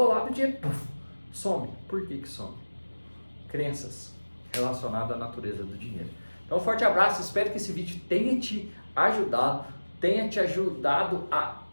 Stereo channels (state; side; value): inverted; both; correlation -1.00